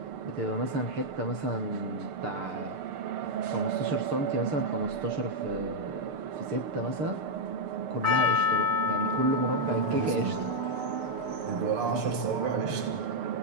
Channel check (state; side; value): late; left; 6.7 ms